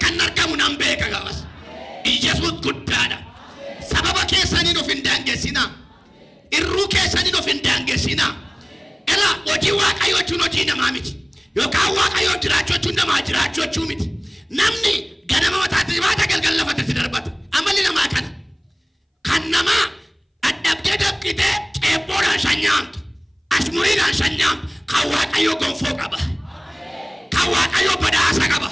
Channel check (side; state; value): both; identical; correlation 1.00